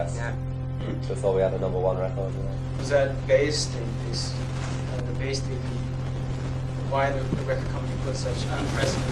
before we had a #1 record. You know. Was that based why the record company put such unprecedented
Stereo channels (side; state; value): both; identical; correlation 1.00